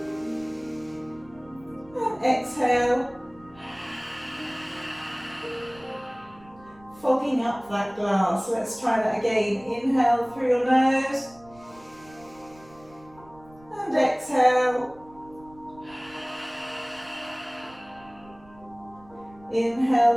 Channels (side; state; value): right; noise; rumble, 25 dB below the sound